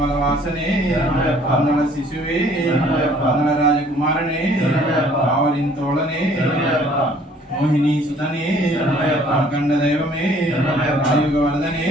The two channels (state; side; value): normal; both; correlation 0.58